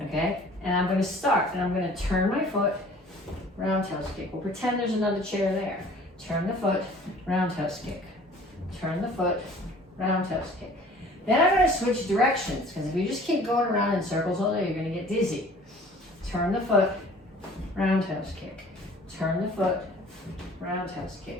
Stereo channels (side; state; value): both; normal; correlation 0.50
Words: Okay? And I'm gonna start and I'm gonna turn my foot, roundhouse kick. We'll pretend there's another chair there. Turn the foot, roundhouse kick. Turn the foot, roundhouse kick. Then I'm gonna switch directions because if you just keep going around in circles all day, you're gonna get dizzy. Turn the foot, roundhouse kick. Turn the foot, roundhouse